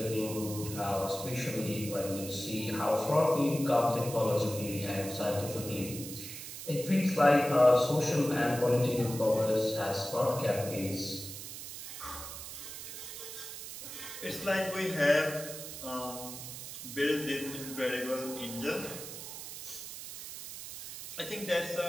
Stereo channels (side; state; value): right; noise; hiss, 10 dB below the sound